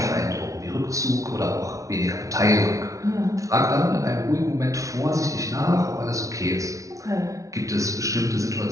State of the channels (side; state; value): left; late; 0.16 ms